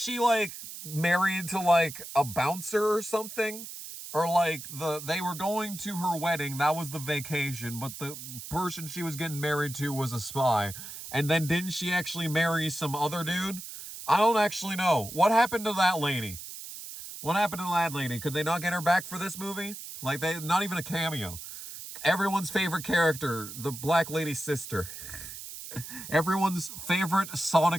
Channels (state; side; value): noise; right; hiss, 11 dB below the sound